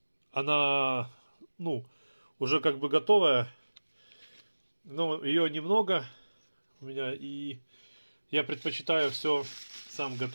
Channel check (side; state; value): both; inverted; correlation -1.00